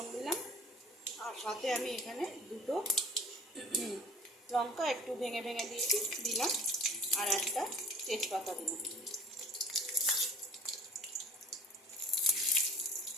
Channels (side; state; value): both; normal; correlation 0.47